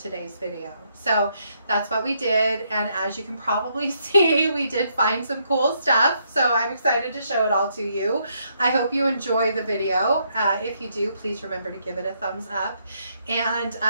video. So that's what we did, and as you can probably see, we did find some cool stuff, so I'm excited to show it all to you. I hope you enjoy the video. If you do, please remember to give it a thumbs up. And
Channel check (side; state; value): both; inverted; correlation -0.74